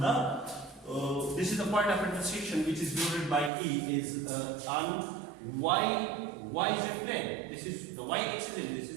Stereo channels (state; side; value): drops out; left; at 3.5 s